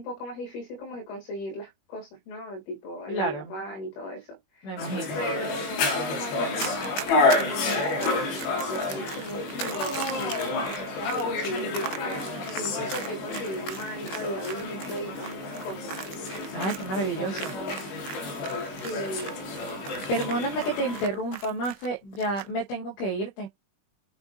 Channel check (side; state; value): right; late; 21 ms